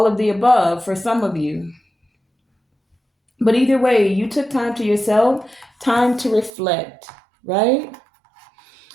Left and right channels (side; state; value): left; drops out; at 6.5 s